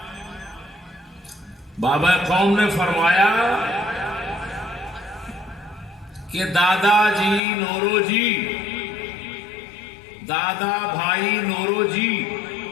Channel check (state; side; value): drops out; right; at 7.4 s